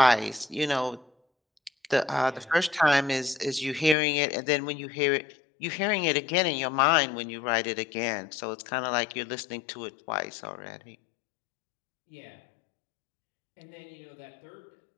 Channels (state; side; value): drops out; right; at 4.0 s